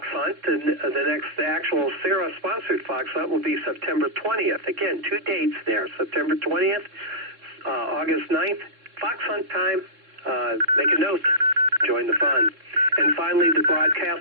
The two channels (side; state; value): left; late; 3.7 ms